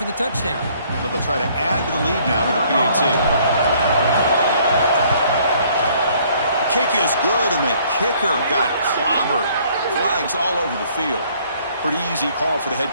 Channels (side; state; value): both; inverted; correlation -0.61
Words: the touchdown. So they'll try to add to the lead now with the PAT. Kick is good, and the kicker got clobbered. Flags all over the field. Pretty easy call for the head